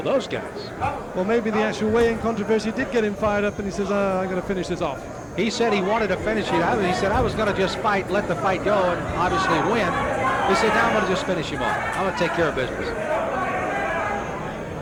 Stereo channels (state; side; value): identical; both; correlation 1.00